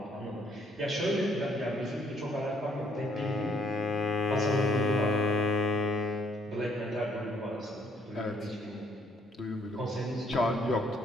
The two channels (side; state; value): both; normal; correlation 0.66